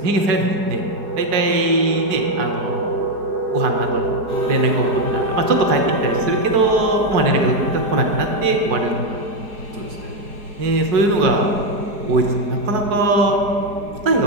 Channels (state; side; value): late; left; 4.8 ms